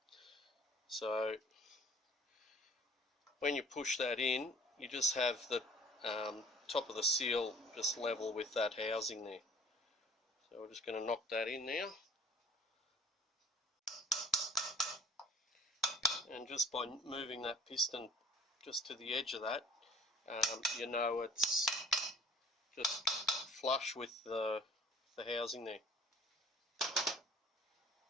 So when you push that in, you just have the top of the seal just level with that housing there. So we're just going to knock that in now. And just by moving that piston just to the edge of that, you know it's just flush with the housing there.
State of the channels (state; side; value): normal; both; correlation 0.51